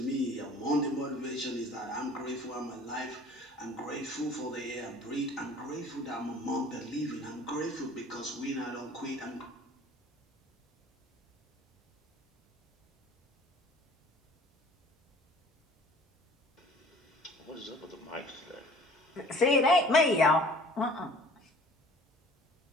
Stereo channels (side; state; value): both; normal; correlation 0.49